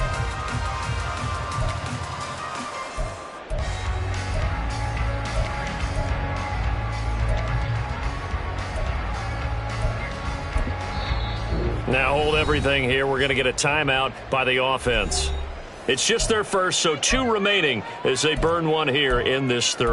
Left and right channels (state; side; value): identical; both; correlation 1.00